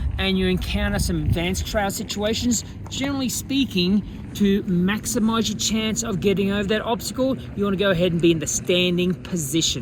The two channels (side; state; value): both; identical; correlation 1.00